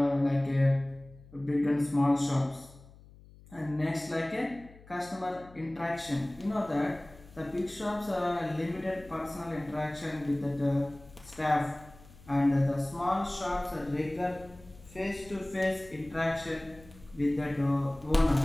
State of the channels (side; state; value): left; noise; hum, 22 dB below the sound